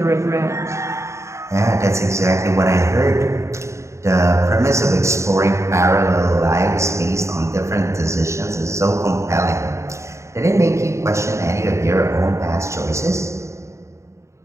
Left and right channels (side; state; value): left; late; 0.14 ms